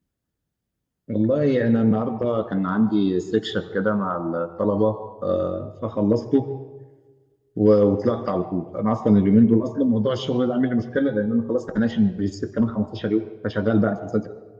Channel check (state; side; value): identical; both; correlation 1.00